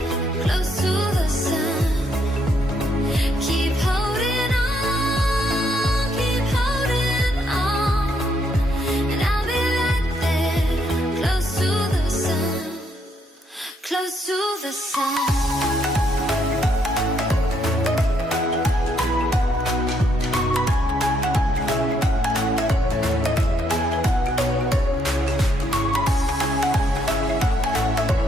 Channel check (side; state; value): both; normal; correlation 0.73